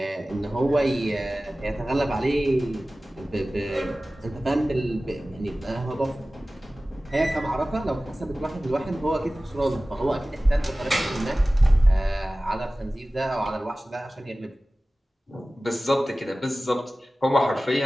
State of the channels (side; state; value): both; normal; correlation 0.97